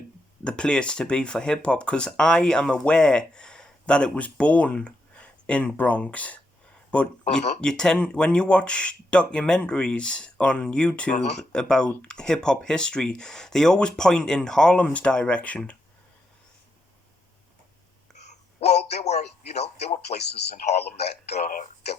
the place to be for hip hop, because I am aware that it was born in Bronx, but you tend, when you watch documentaries on YouTube about hip hop history, they always point in Harlem's direction. Well, there were places in Harlem that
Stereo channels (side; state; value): both; normal; correlation 0.81